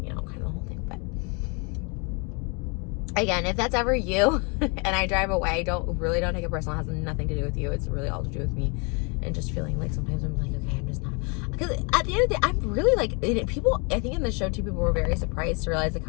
you know, kind of the whole thing. But again, if that's ever you and I drive away, don't take it personal. It has nothing to do with you. It's really all to do with me. And just feeling like sometimes I'm like, okay, I'm just not. Because at the end of the day, I'm really like, people, I think in the show too, people were very surprised to realize like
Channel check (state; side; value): quieter; right; 32.8 dB